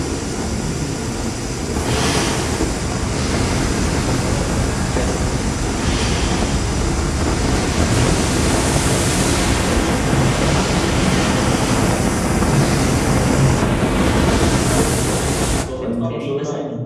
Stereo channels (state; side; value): identical; both; correlation 1.00